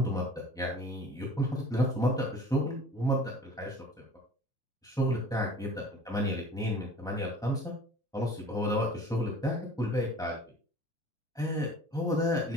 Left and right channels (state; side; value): normal; both; correlation 0.44